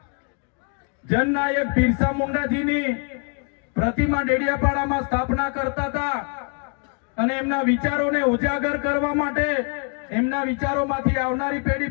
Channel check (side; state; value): right; quieter; 39.6 dB